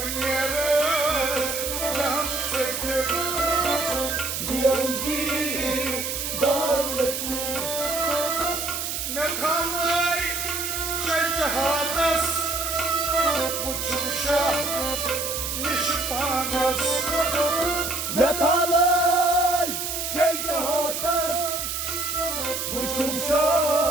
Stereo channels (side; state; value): right; noise; hiss, 3 dB below the sound